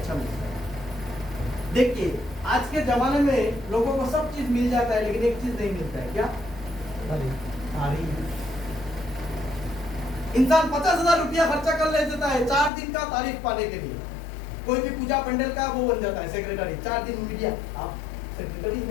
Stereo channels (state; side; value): drops out; right; at 12.7 s